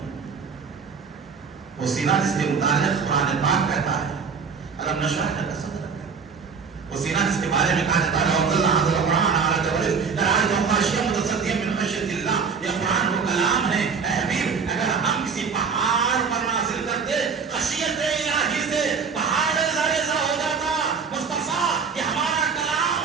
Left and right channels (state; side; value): quieter; left; 5.8 dB